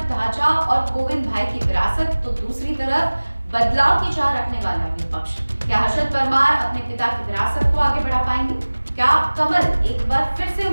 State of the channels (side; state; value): both; inverted; correlation -1.00